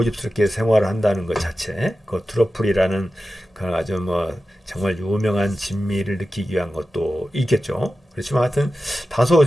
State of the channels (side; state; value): both; normal; correlation 0.93